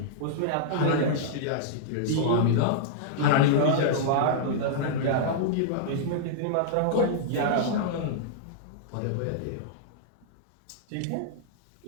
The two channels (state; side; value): different; both; correlation -0.02